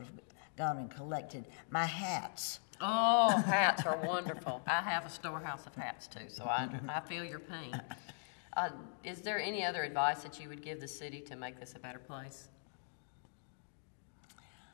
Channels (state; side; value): silent; right; digital silence